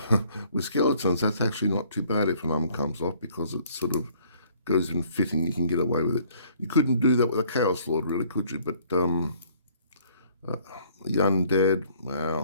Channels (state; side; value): inverted; both; correlation -0.60